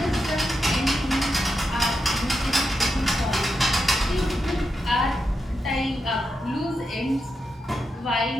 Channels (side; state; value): both; normal; correlation 0.86